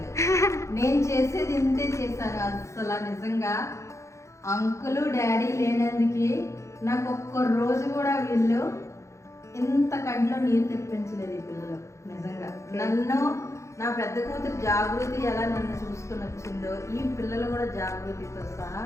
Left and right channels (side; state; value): right; late; 0.14 ms